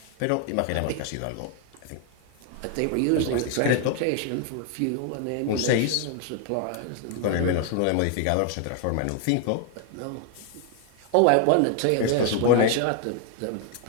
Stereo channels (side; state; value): both; different; correlation 0.00